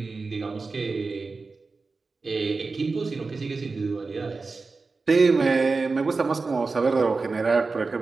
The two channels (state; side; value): quieter; left; 4.1 dB